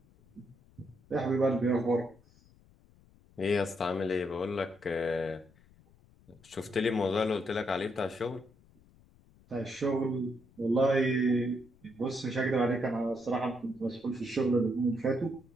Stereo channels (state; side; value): noise; left; rumble, 28 dB below the sound